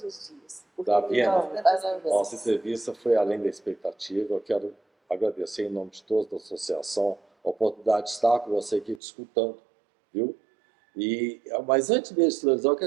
os dias. Davina, nossa entrevista foi além da expectativa. Eu quero agradecer em nome de todos da associação a oportunidade de estar com você aqui discutindo, viu? Mas antes mesmo de televisão, eu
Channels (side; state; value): left; drops out; at 9.0 s